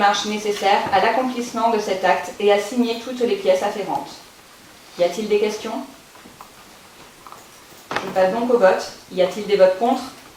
nécessaires à l'accomplissement de cet acte et à signer toutes les pièces afférentes. Y a-t-il des questions? Je passe donc au vote. Y a-t-il des votes contre?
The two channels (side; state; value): both; identical; correlation 1.00